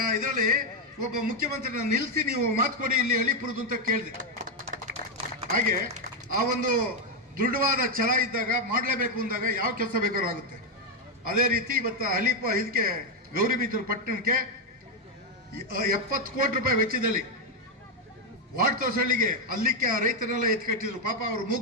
ಇದರಲ್ಲಿ ಒಬ್ಬ ಮುಖ್ಯಮಂತ್ರಿನ ನಿಲ್ಲಿಸಿ ನೀವು ಮಾತು ಕೊಡಿ ಇಲ್ಲಿ ಅಳಿಪುರದು ಅಂತ ಕೇಳಿದೆ. ಹಾಗೆ ಆ ಒಂದು ದೃಢವಾದ ಛಲ ಇದ್ದಾಗ ಮಾಡಲೇಬೇಕು ಅಂದಾಗ ಯಾವ ಕೆಲಸ ಬೇಕಾದ್ರೂ ಆಗುತ್ತೆ. ಅದೇ ರೀತಿ ಇವತ್ತು ಇದಕ್ಕೆ ಗೌರಿಬಿದೂರು ಪಟ್ಟಣಕ್ಕೆ 70 ಕೋಟಿ ರೂಪಾಯಿ ವೆಚ್ಚದಲ್ಲಿ ವಾರ್ಡ್ ತೋಸಳ್ಳಿಗೆ ಅಲ್ಲಿಕ್ಕೆ ಆ ರೈತರೆಲ್ಲ ಎತ್ಕಟ್ಟಿದ್ರು. ಪಾಪ ಅವ್ರು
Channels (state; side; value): normal; both; correlation 0.03